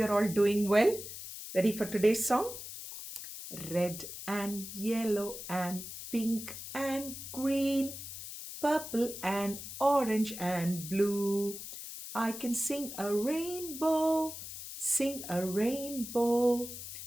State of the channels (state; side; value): noise; left; hiss, 10 dB below the sound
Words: all doing well. Ready for today's song? Red and yellow and pink and green, purple and orange and blue. I can sing a rainbow, sing a rainbow